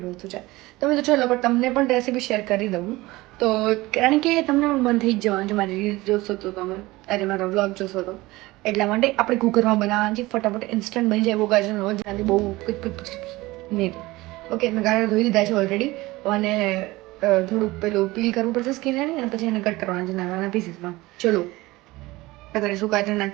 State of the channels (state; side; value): quieter; left; 20.0 dB